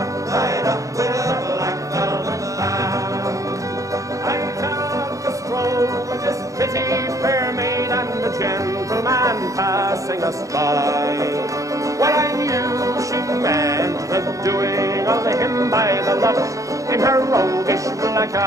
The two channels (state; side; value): late; left; 0.16 ms